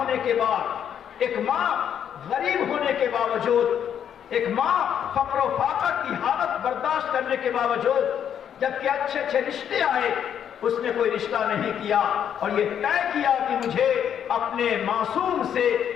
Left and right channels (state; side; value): quieter; right; 8.9 dB